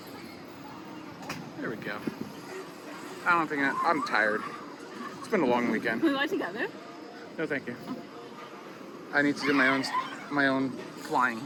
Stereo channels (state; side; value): identical; both; correlation 1.00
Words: There we go. I don't think I'm tired. It's been a long weekend. We go together? No, thank you. I need to do my own flying.